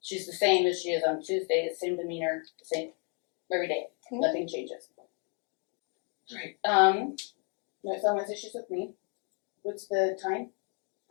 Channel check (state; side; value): quieter; right; 38.4 dB